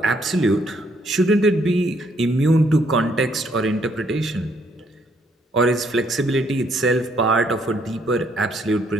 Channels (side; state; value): both; normal; correlation 0.69